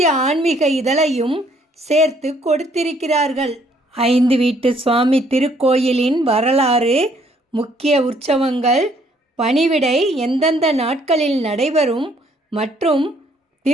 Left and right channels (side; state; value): both; normal; correlation 0.65